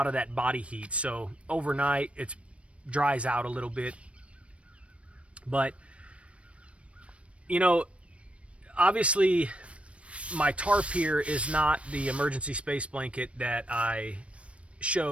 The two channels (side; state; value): left; late; 0.062 ms